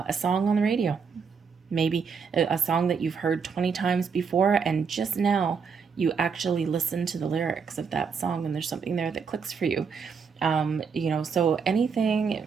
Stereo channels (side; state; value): left; quieter; 6.0 dB